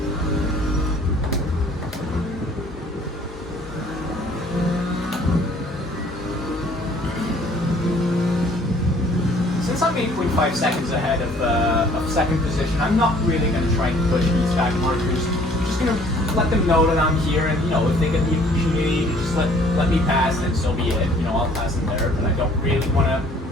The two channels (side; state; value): both; normal; correlation 0.57